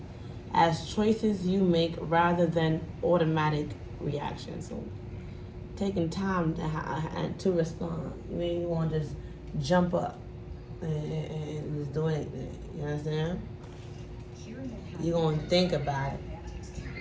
as choices you make rather than automatic reactions. So taking time to respond. You ain't want to just jump up and just do anything. You understand? You're going to think about it.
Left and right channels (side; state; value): both; identical; correlation 1.00